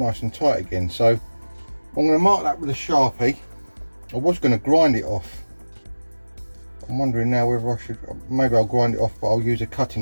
and tight again. So I'm going to mark that with a Sharpie. I was going to grind it off. I'm wondering now whether I should, maybe I'll grind it off, but I'll use a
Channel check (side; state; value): both; inverted; correlation -1.00